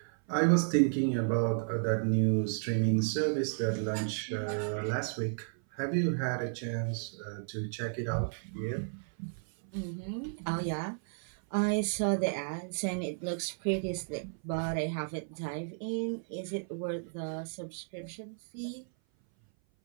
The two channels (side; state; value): left; silent; 56 dB below the other